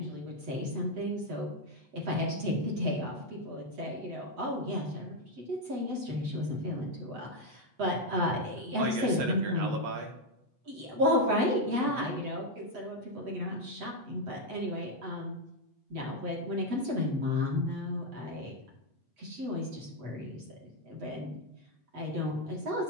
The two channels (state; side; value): late; left; 8.1 ms